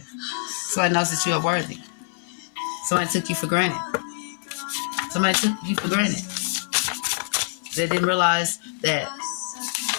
Somebody knows that you are worthy. Somebody took you for granted. Somebody took you for granted. They didn't realize that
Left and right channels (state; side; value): silent; right; 56 dB below the other